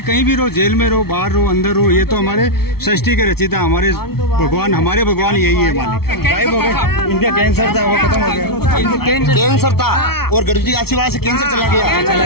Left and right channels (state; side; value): late; right; 0.95 ms